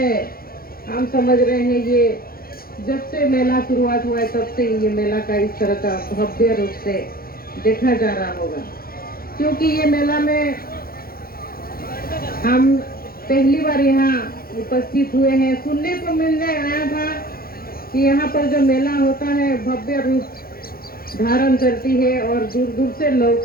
हम समझ रहे हैं ये जब से मेला शुरुआत हुआ है तब से ये मेला का इस तरह का भव्य रूप से देखा जा रहा होगा। क्योंकि ये मेला में हम पहली बार यहाँ उपस्थित हुए हैं। सुनने को मिलने आया था कि यहाँ पर जो मेला होता है भव्य रूप धारण करती है और दूर दूर से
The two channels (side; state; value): right; late; 0.43 ms